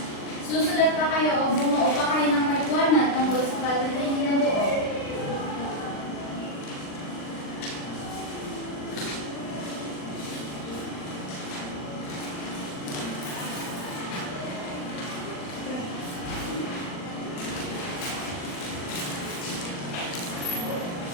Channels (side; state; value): right; late; 39 ms